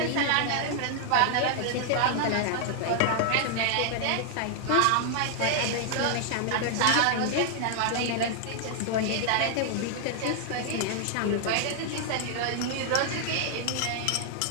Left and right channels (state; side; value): different; both; correlation 0.00